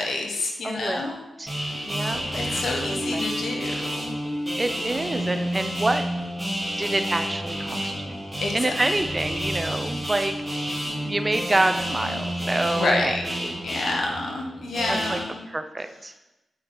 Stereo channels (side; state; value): both; normal; correlation 0.93